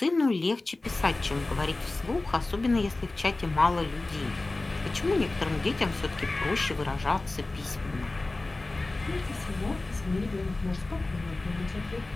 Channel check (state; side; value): quieter; right; 3.1 dB